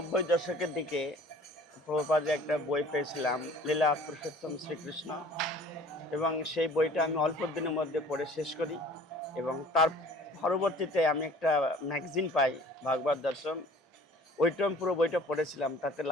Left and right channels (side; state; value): both; normal; correlation 0.49